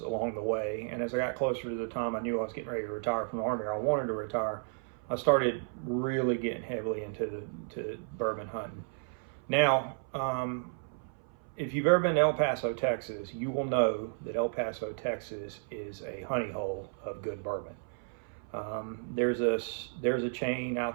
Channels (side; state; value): left; silent; 56 dB below the other